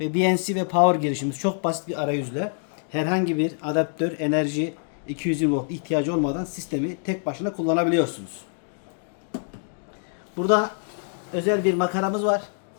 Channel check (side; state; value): right; silent; 61 dB below the other